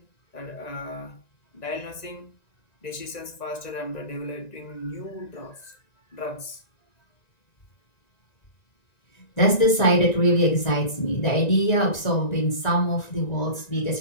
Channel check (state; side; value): late; right; 1.9 ms